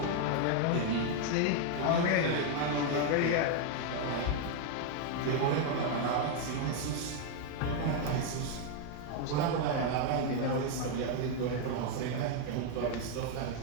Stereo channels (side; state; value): both; different; correlation 0.00